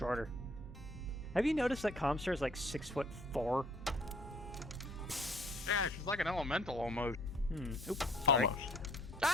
Have you noticed that Comstar is like 6'4"? Yeah, she's like an elemental almost. Oops. Sorry. Almost.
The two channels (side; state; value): both; normal; correlation 0.59